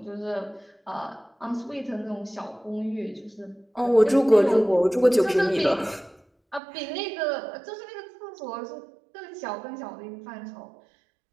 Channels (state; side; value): drops out; left; at 6.6 s